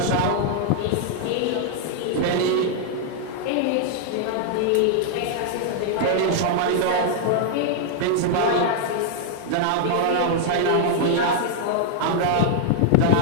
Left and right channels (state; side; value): different; both; correlation -0.01